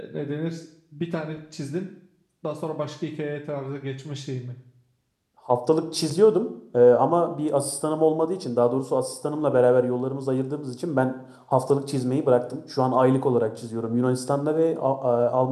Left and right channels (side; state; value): both; identical; correlation 1.00